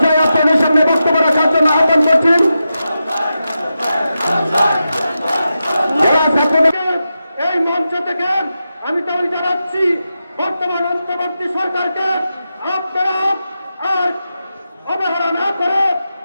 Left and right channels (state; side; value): inverted; both; correlation -0.89